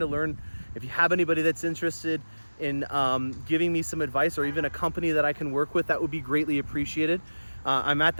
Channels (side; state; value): both; inverted; correlation -1.00